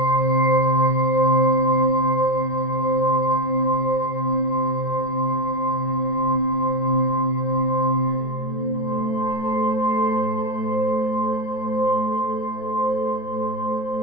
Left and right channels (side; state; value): right; late; 13 ms